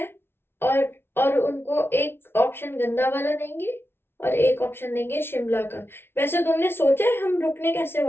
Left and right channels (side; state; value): right; late; 0.11 ms